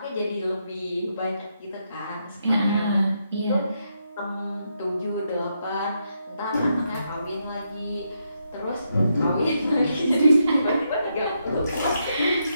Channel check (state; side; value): inverted; both; correlation -0.80